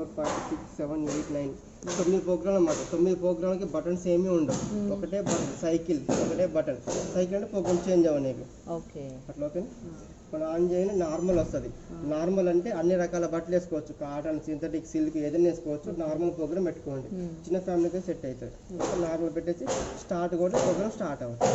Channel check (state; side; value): identical; both; correlation 1.00